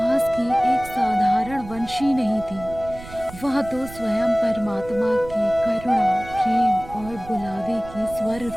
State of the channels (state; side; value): noise; right; rumble, 16 dB below the sound